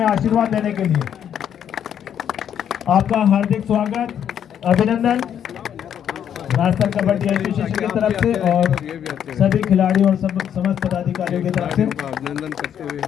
आशीर्वाद देने के लिए। आपका हार्दिक स्वागत, अभिनंदन राजस्थान कबड्डी एसोसिएशन की तरफ से और सभी खिलाड़ियों और समस्त पदाधिकारियों की तरफ से अभिनंदन करते हुए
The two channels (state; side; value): quieter; right; 9.2 dB